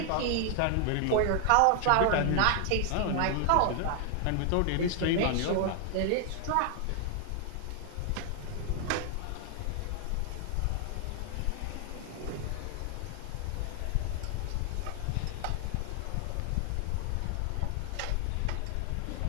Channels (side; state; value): both; different; correlation 0.00